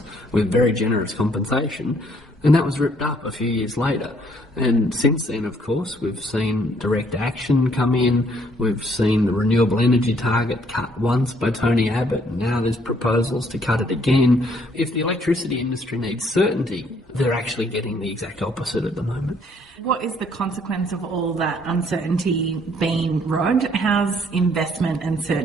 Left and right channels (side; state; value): both; normal; correlation 0.65